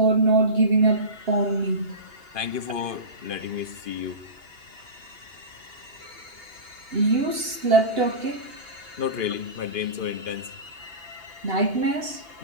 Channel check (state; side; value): late; left; 2.8 ms